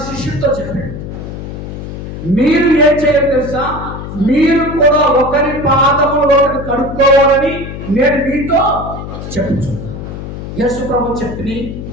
శిష్యులతో చెప్పాడు. మీరు ఏం చేయాలి తెలుసా? మీరు కూడా ఒకరి పాదములు ఒకరు కడుక్కోవాలని నేను మీతో చెప్పుచున్నాను. యేసు ప్రభు చెప్పి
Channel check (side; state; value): left; noise; hum, 9 dB below the sound